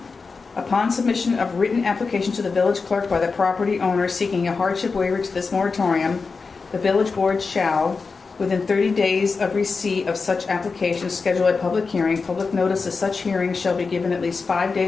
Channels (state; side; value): quieter; right; 4.6 dB